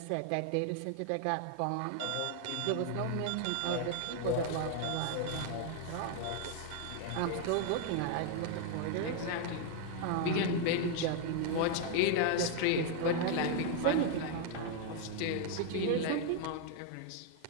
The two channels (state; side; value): different; both; correlation 0.00